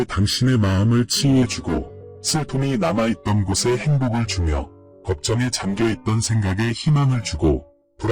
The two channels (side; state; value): both; identical; correlation 1.00